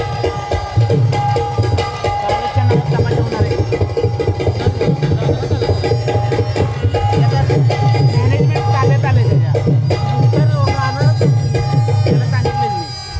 सावळच्या नावात तमाशा होणार आहे. मॅनेजमेंट ताब्यात आले त्याच्या. उत्तर गाणं त्याला सांगितलं मी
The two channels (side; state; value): both; identical; correlation 1.00